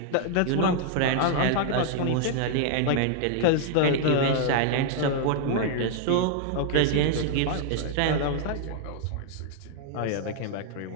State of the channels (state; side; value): different; both; correlation 0.00